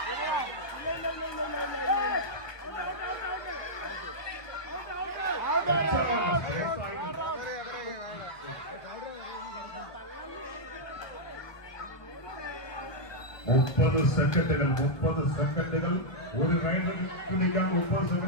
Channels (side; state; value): right; late; 1.4 ms